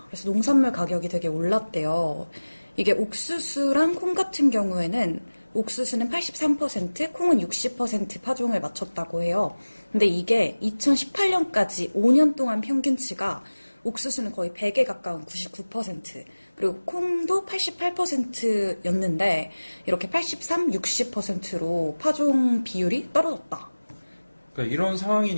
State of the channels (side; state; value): both; inverted; correlation -1.00